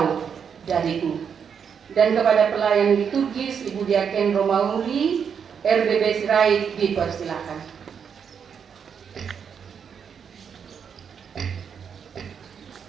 Dariku. Dan kepada pelayan liturgis Ibu Diaken Romauri, RBB Sirait, dipersilakan.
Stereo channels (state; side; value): quieter; left; 7.1 dB